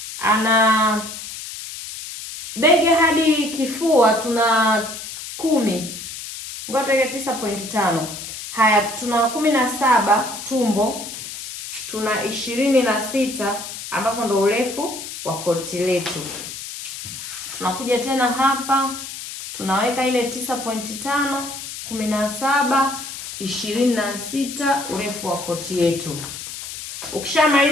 ana bega hadi kifua tuna 10. Ngoja 9.5. Haya, tuna 17 tumbo, tuna 26 ambapo ndo urefu wa koti letu. Tunakuja tena hapa, tunaweka ile 9.5, 17, 26 urefu wa koti yetu.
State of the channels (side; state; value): left; noise; hiss, 9 dB below the sound